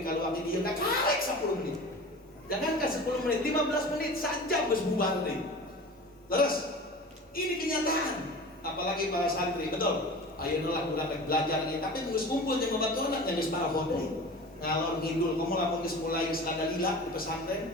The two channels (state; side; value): normal; both; correlation 0.36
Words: kalau abdi dia tak karek 10 menit, jangankan 10 menit, 15 menit saja harus bubar deh. Terus ini kenyataan, apalagi para santri, betul. Ayo lah udah belajar nih, tapi terus kumpul jeung babaturan yang geus paraho deui. Ngalor ngidul, kamu lamun geus mulai skandalila di